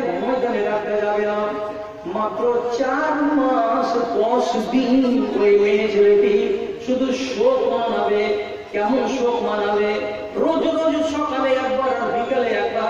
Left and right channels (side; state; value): both; identical; correlation 1.00